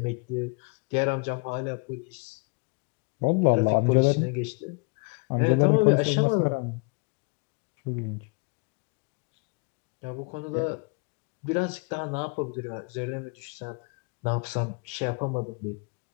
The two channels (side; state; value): right; quieter; 32.3 dB